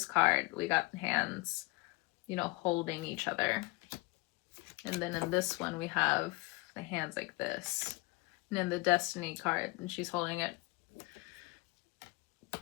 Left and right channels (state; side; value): quieter; right; 23.5 dB